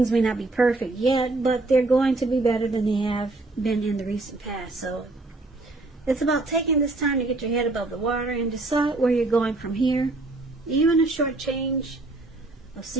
may not be perfect yet, but they're going to be better than they have been in the recent past. So it's about taking this time to get your head above the water and decide where you're going from here. Even a short change of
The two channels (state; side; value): quieter; left; 3.0 dB